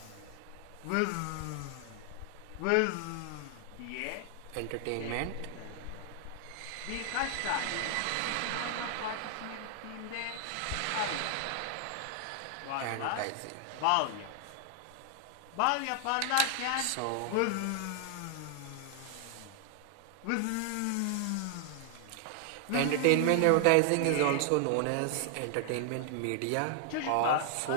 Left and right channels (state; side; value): different; both; correlation 0.00